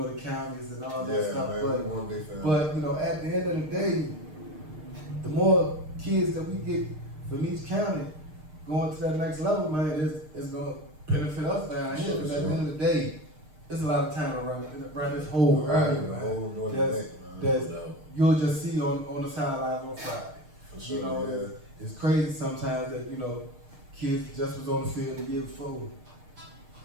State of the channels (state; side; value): late; left; 6.6 ms